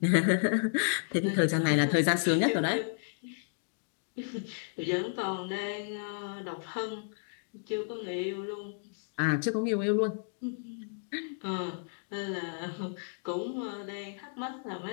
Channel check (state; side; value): silent; right; digital silence